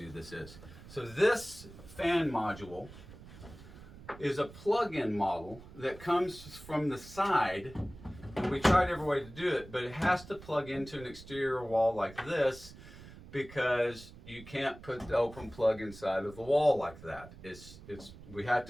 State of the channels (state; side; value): noise; right; rumble, 17 dB below the sound